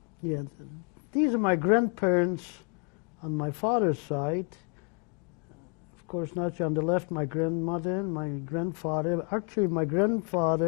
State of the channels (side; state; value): right; quieter; 38.2 dB